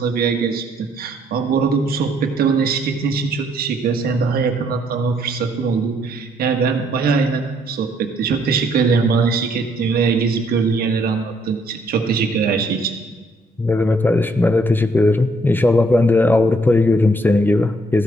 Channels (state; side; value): normal; both; correlation 0.68